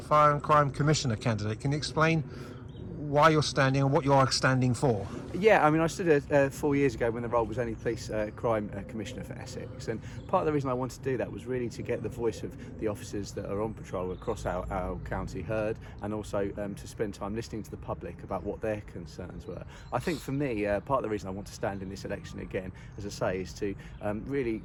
Fire and Crime Commissioner candidate. Can you explain why you're standing and what you are standing for? Yeah, I mean, I stood 4 years ago when the role was only Police Crime Commissioner for Essex, and part of the reason I wanted to do that was really to get the voice of the officers that are on patrol across our county heard, and also to spend time listening to the public about what their concerns were. I think for me, part of the reason I want to stand in this election again, as I say, is to really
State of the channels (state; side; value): identical; both; correlation 1.00